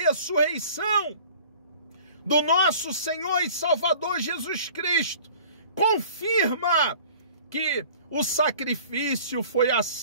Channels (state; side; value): inverted; both; correlation -0.47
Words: do nosso Senhor e Salvador Jesus Cristo confirma que o sacrifício foi